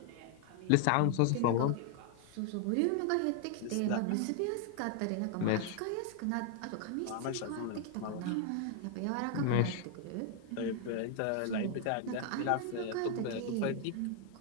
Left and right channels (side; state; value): both; different; correlation 0.00